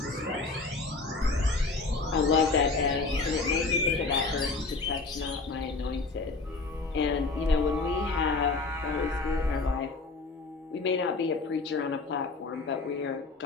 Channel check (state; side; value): quieter; right; 3.8 dB